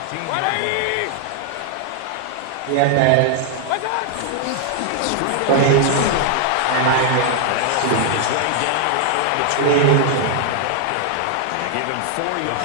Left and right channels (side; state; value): both; different; correlation 0.00